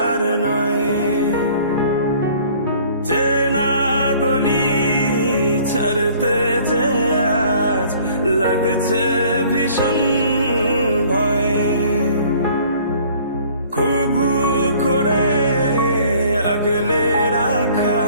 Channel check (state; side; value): inverted; both; correlation -0.54